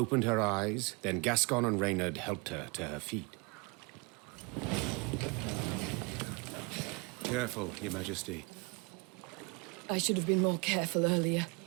her eyes, then Gascon and Reynard helped her to her feet. Careful, Your Majesty. I should have been more careful earlier.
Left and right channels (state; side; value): quieter; left; 29.8 dB